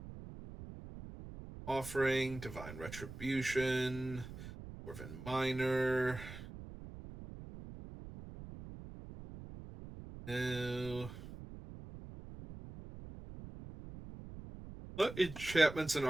Offering, Divine Retribution, Dwarven Miner. No. What enchantments and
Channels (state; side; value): noise; right; rumble, 12 dB below the sound